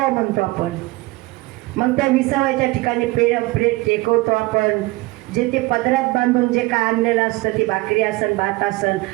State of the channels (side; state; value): left; quieter; 21.6 dB